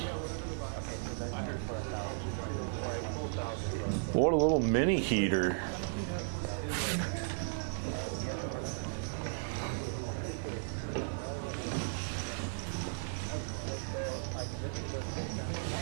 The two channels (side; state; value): left; silent; digital silence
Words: What a little mini heater.